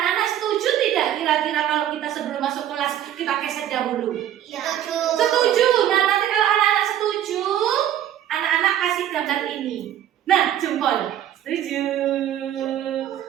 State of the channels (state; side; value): quieter; left; 11.2 dB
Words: setuju tidak kira-kira kalau kita sebelum masuk kelas kita keset dahulu? Setuju. Nah, nanti kalau anak-anak setuju, anak-anak kasih gambar ini. Nah, jempol. Setuju.